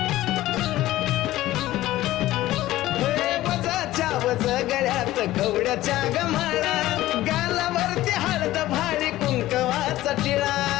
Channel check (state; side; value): quieter; right; 15.7 dB